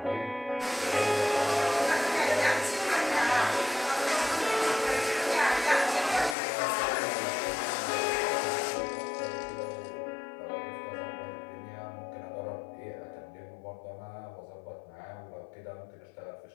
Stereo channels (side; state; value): right; drops out; at 6.4 s